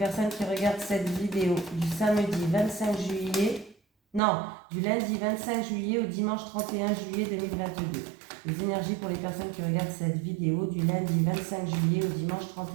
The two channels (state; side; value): drops out; left; at 4.2 s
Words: qui regardent cette vidéo du samedi 25 juillet... Non, du lundi 25 juillet au dimanche 31 juillet 2022. Les énergies pour les personnes qui regardent cette vidéo du lundi 25 juillet au dimanche